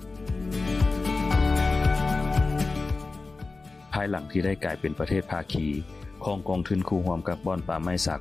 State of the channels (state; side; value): quieter; right; 3.7 dB